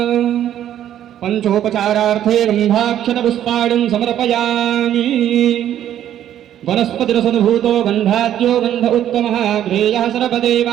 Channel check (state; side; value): quieter; left; 11.1 dB